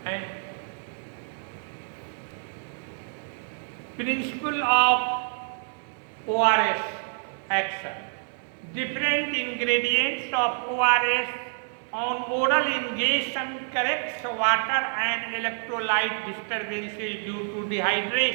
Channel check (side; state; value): left; silent; 60 dB below the other